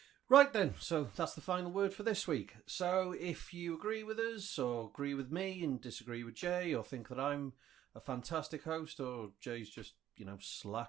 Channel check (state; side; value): quieter; left; 11.8 dB